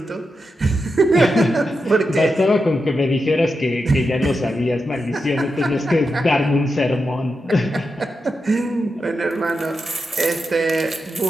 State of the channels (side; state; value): both; normal; correlation 0.88